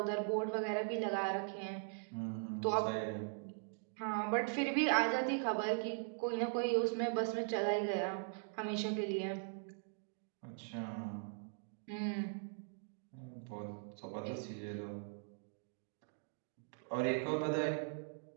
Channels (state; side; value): silent; left; digital silence